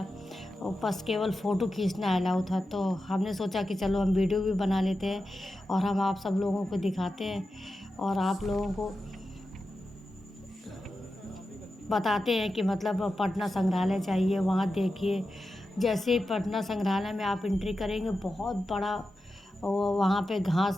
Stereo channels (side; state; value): both; normal; correlation 0.91